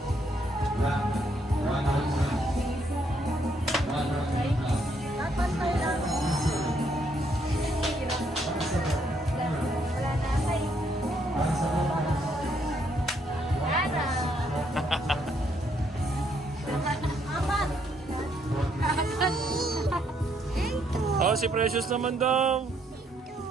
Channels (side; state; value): both; normal; correlation 0.72